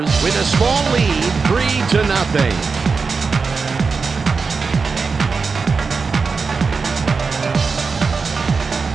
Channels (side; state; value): left; quieter; 4.8 dB